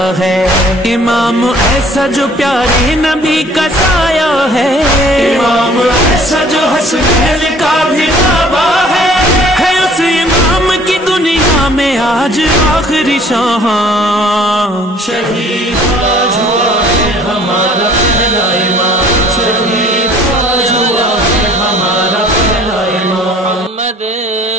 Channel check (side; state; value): both; normal; correlation 0.54